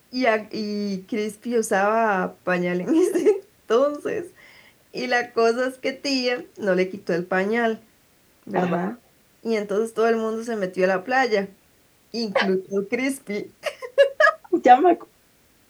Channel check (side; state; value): both; identical; correlation 1.00